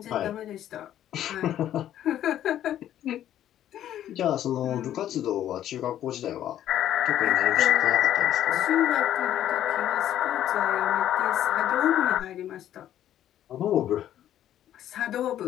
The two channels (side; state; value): right; quieter; 11.5 dB